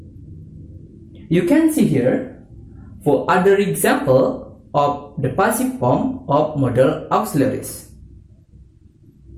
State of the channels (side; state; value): both; identical; correlation 1.00